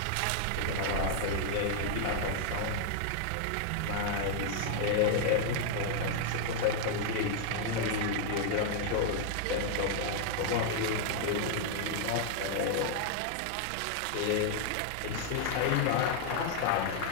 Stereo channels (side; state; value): both; different; correlation 0.00